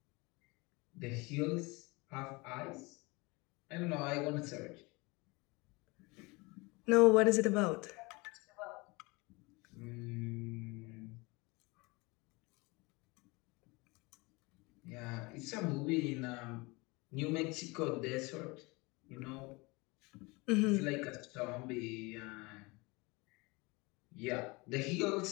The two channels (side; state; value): right; quieter; 25.5 dB